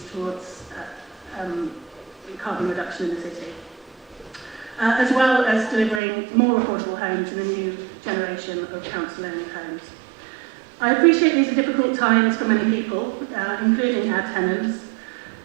towards carbon reduction in the city. As well as delivering more affordable homes in a new generation of council-owned homes. I appreciate these are difficult times for many people, including our tenants,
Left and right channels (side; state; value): left; drops out; at 6.0 s